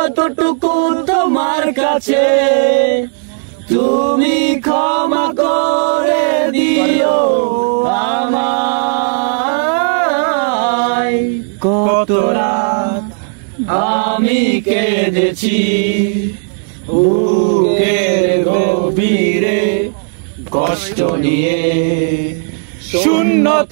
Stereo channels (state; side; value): silent; left; digital silence